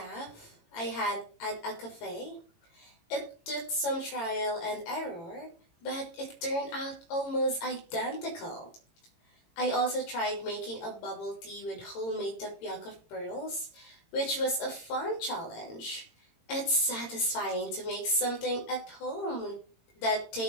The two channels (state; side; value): late; right; 18 ms